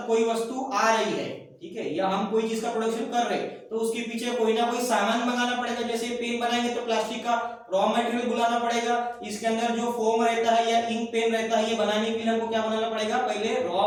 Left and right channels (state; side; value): identical; both; correlation 1.00